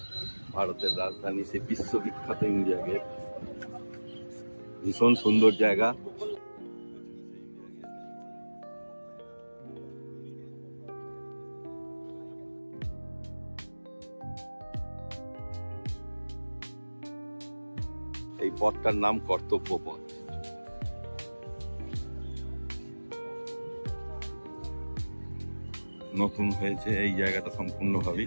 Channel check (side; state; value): both; inverted; correlation -1.00